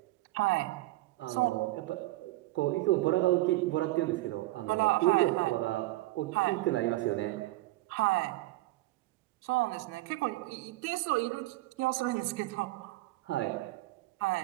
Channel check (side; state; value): left; quieter; 18.5 dB